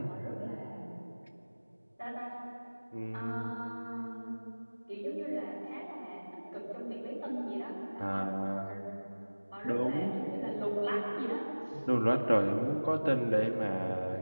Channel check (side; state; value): both; inverted; correlation -1.00